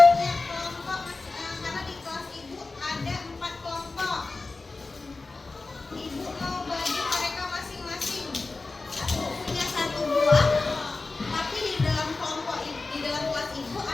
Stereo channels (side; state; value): right; quieter; 3.7 dB